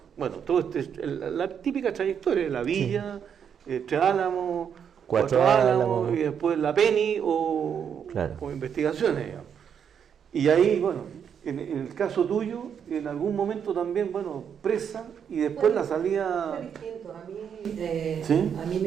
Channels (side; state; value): left; quieter; 7.8 dB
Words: típica trayectoria, la Villa, Tres Álamos, Cuatro Álamos, y después la Penny o investigaciones, digamos. Y ahí, bueno, en el caso tuyo, en algún momento también, bueno, presa, y después la salida... Fue distinto. ¿Sí? A mí